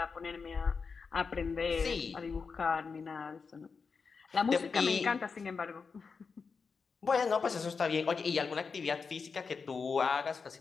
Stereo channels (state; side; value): quieter; right; 5.2 dB